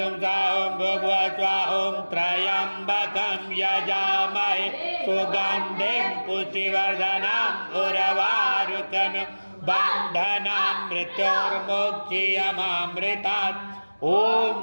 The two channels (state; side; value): inverted; both; correlation -1.00